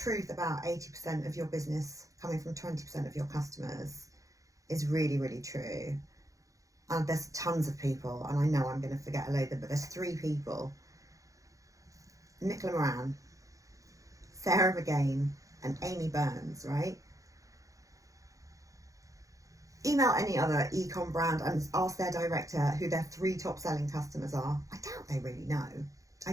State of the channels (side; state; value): left; late; 0.16 ms